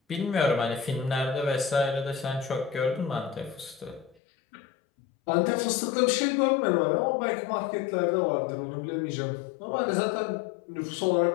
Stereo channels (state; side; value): drops out; right; at 4.2 s